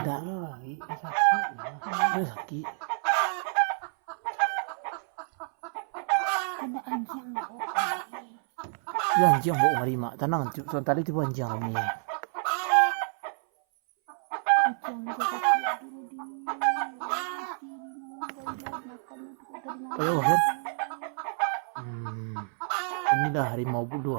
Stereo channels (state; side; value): silent; left; 59 dB below the other